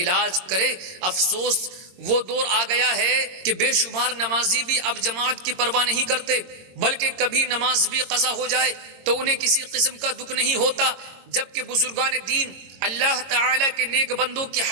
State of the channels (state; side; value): late; left; 22 ms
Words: کرے افسوس، وہ دور آ گیا ہے کہ بے شمار نمازی بھی اب جماعت کی پرواہ نہیں کرتے، بلکہ کبھی نماز بھی قضا ہو جائے تو انہیں کسی قسم کا دکھ نہیں ہوتا، جبکہ بزرگان دین اللہ تعالی کے نیک بندوں کی